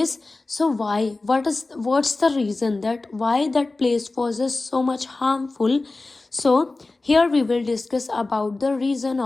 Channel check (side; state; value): right; quieter; 3.3 dB